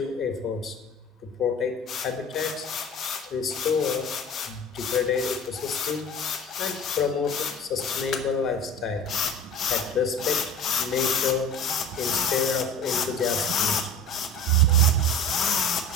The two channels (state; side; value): normal; both; correlation 0.38